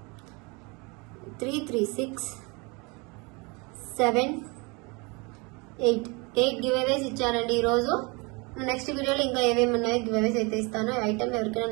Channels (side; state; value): left; quieter; 28.7 dB